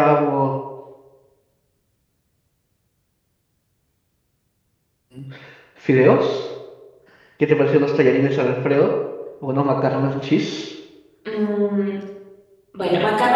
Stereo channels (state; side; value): identical; both; correlation 1.00